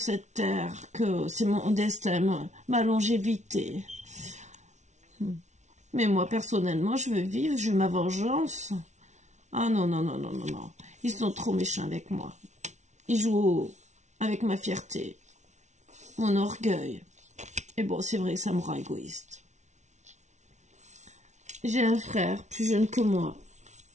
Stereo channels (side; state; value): left; late; 0.33 ms